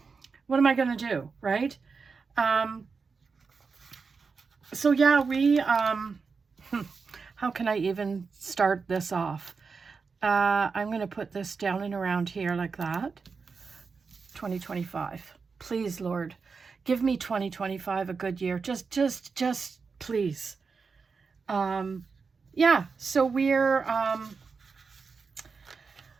what am I going to do, right? So, yeah, we, how can I even start this off? I'm going to put this down and around here like that. 2025. Please, Lord, give me 2025 a good year. Just please. Yeah, so we're,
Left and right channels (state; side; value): quieter; left; 5.0 dB